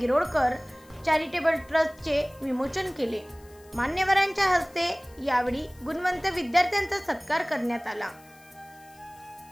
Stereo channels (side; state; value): left; noise; hiss, 27 dB below the sound